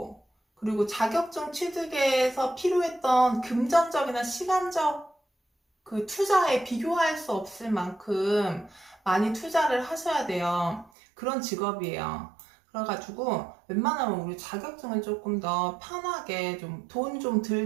그리고 자격증 취득에서 필요했던 금전적이나 시간적 그 투자에 비교할 수 없을 만큼 많이 투자를 하셔야 돼요. 그런 직업이에요. 그래가지고 웬만하면 우리 자격증을 조금 더 편하게 좀 돈 좀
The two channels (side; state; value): left; drops out; at 10.9 s